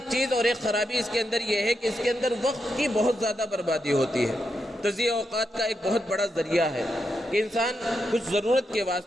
چیز اور ایک خرابی اس کے اندر یہ ہے کہ اس کے اندر وقت کی بہت زیادہ بربادی ہوتی ہے۔ تضییع اوقات کا ایک بہت بڑا ذریعہ ہے کہ انسان کچھ ضرورت کے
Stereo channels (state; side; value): normal; both; correlation 0.84